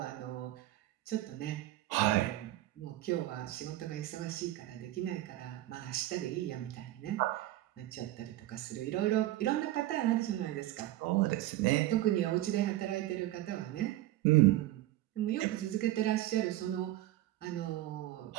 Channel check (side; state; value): left; quieter; 15.4 dB